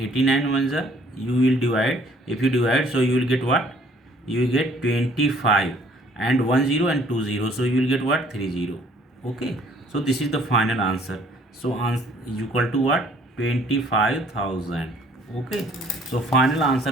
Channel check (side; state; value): both; normal; correlation 0.59